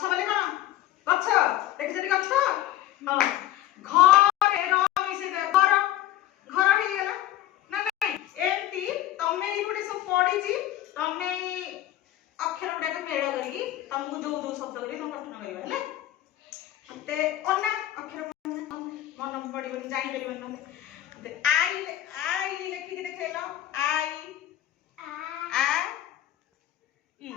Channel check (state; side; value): quieter; right; 13.6 dB